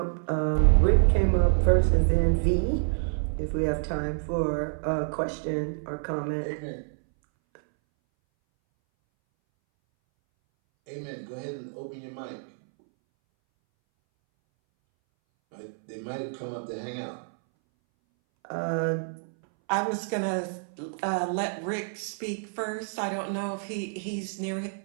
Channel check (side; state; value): left; silent; 59 dB below the other